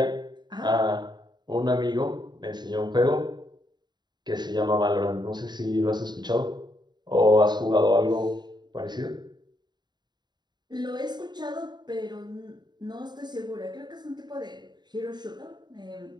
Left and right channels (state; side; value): late; left; 0.21 ms